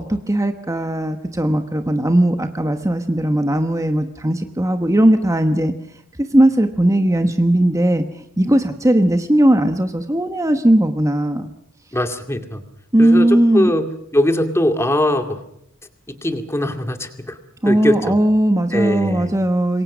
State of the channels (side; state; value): both; normal; correlation 0.91